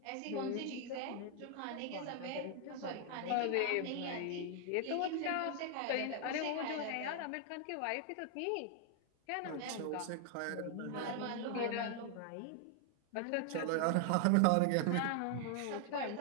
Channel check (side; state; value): both; different; correlation 0.00